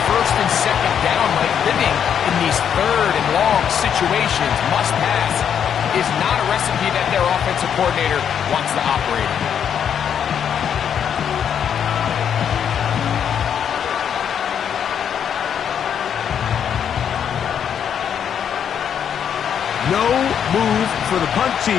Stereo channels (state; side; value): quieter; right; 8.4 dB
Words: 1st and 2nd down. Like living in these 3rd and long situations, must pass, is not a recipe that their offensive coordinator wants to operate in. No move for the punt